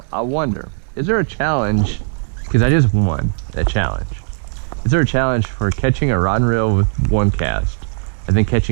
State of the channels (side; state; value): left; silent; 68 dB below the other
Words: I wonder, is there a challenge? Because I just won a challenge. Is there a challenge for catching a rod and reel with 1 cast and then